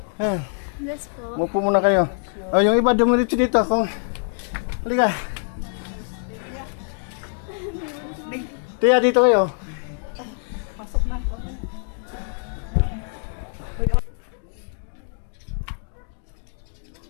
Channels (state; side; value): silent; right; digital silence